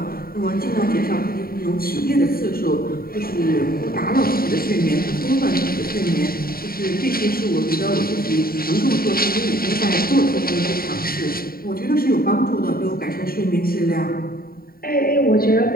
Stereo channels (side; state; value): right; late; 0.43 ms